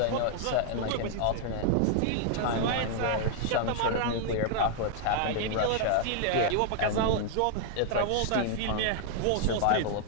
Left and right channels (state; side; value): different; both; correlation 0.00